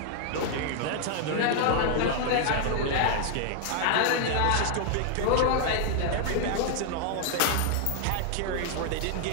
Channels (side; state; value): both; different; correlation 0.00